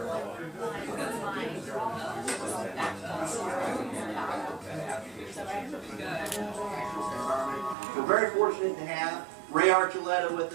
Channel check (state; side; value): drops out; left; at 7.8 s